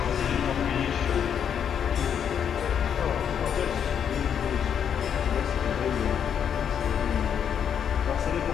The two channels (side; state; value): right; quieter; 8.2 dB